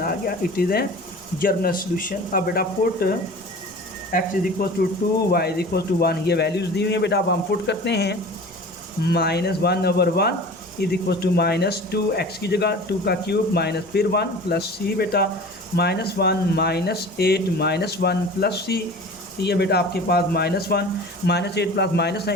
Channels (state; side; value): normal; both; correlation 0.39